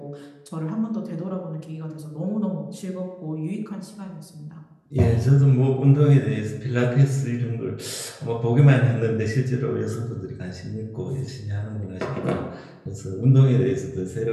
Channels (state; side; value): identical; both; correlation 1.00